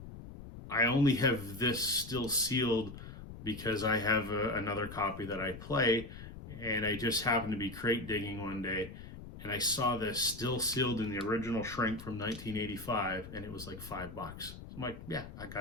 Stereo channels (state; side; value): noise; left; rumble, 13 dB below the sound